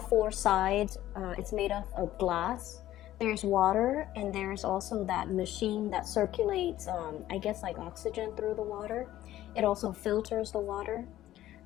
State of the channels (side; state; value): right; quieter; 13.9 dB